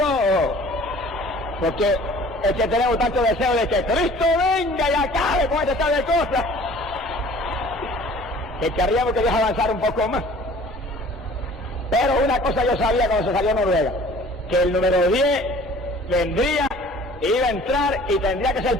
Porque es que tenemos tanto deseo de que Cristo venga y acabe con este tal de cosas, que querríamos que Dios avanzara un poco más. Pero una cosa yo sabía cuando se salió Noruega, que el número 10 vendría, iba a entrar y tendría que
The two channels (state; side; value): normal; both; correlation 0.49